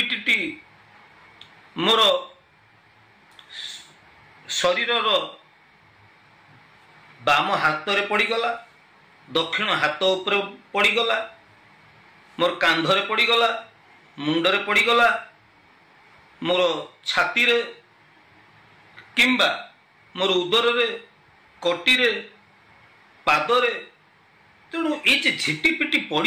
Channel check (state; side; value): identical; both; correlation 1.00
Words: मोर शरीर बाम हाथ रे पड़गला, दक्षिण हाथ उपर पड़गला, मोर कांधरे पड़गला, मुंडरे पड़गला, मोर छाती रे किंबा मोर उदर रे, कटी रे, पादरे। तेणु ये झिटिपिटी पड़